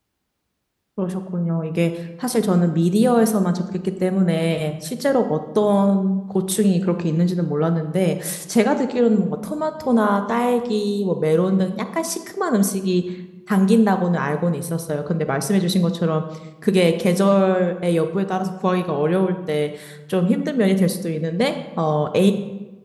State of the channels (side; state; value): both; identical; correlation 1.00